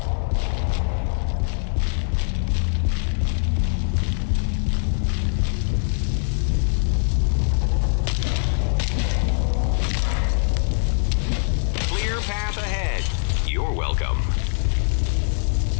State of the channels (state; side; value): silent; right; digital silence